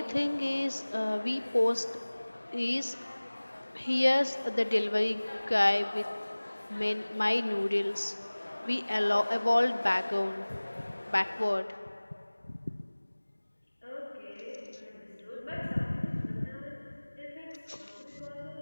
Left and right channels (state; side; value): inverted; both; correlation -1.00